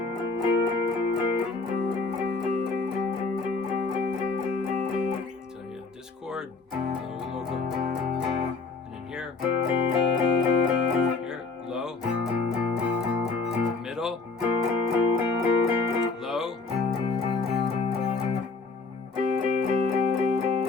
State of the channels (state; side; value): quieter; right; 4.2 dB